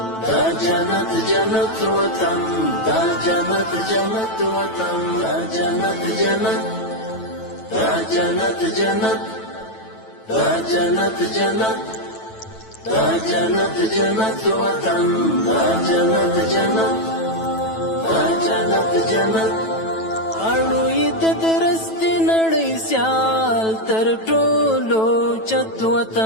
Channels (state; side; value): late; right; 9.1 ms